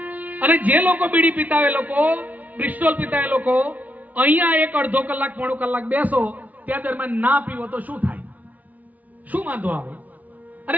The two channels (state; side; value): late; left; 0.076 ms